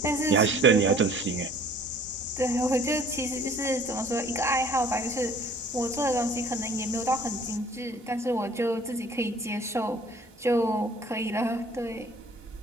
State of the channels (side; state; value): both; normal; correlation 0.53